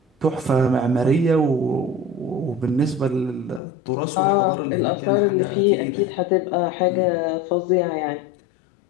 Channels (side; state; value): right; drops out; at 3.6 s